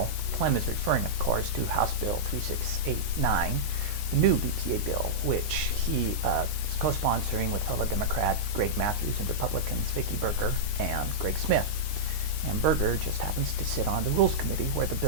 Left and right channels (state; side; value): late; left; 19 ms